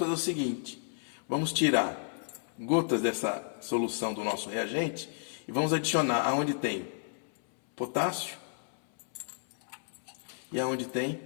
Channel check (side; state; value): right; silent; 56 dB below the other